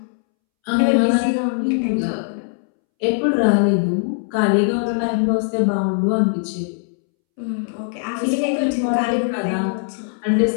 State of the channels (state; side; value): silent; right; 66 dB below the other